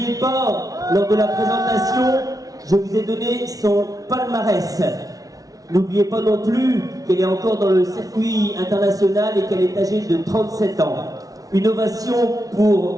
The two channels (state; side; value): late; left; 0.18 ms